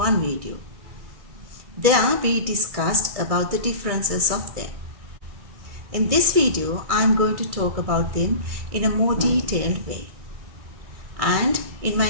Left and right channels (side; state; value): left; late; 2.3 ms